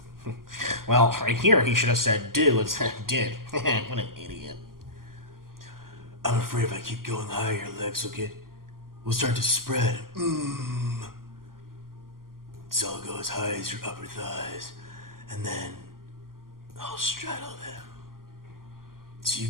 Well, right here he should have said do instead of did. What an idiot. I'm afraid if I keep going higher, your legs will start to spread. So I'll go as high as your upper thighs, and then I'll straddle them. So you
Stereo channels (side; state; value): left; late; 0.92 ms